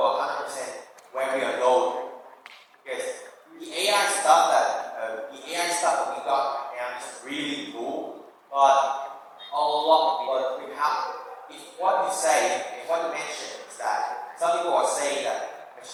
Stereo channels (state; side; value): identical; both; correlation 1.00